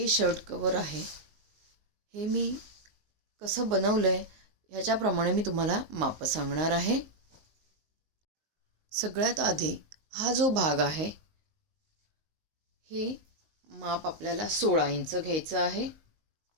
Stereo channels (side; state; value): left; late; 19 ms